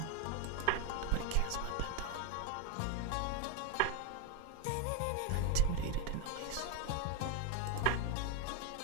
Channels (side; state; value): both; different; correlation 0.00